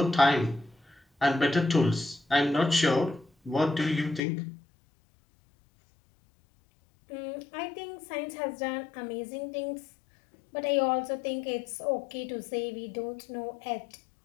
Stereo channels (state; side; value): drops out; right; at 4.2 s